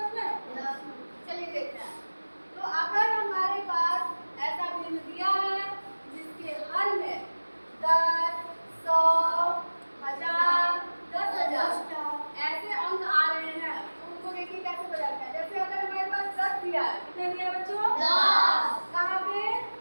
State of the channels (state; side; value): inverted; both; correlation -1.00